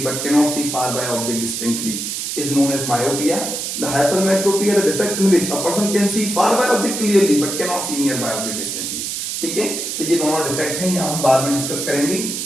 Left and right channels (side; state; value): right; noise; hiss, 4 dB below the sound